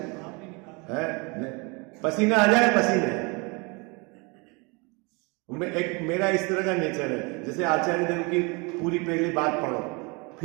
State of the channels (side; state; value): left; quieter; 29.3 dB